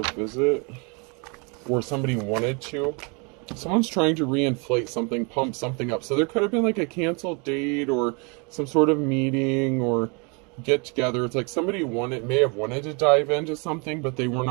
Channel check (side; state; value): left; quieter; 32.4 dB